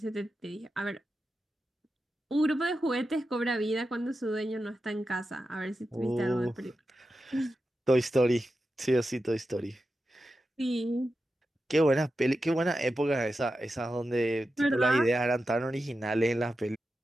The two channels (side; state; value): both; normal; correlation 0.91